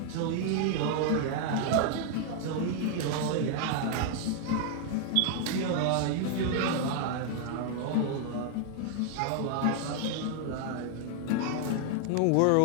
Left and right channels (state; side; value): different; both; correlation 0.00